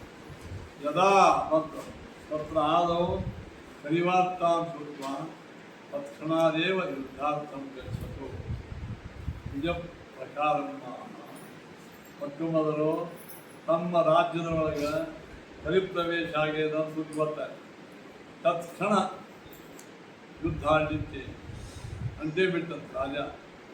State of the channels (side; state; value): both; identical; correlation 1.00